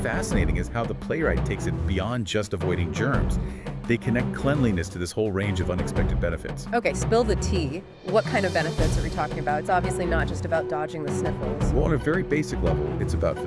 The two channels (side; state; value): both; identical; correlation 1.00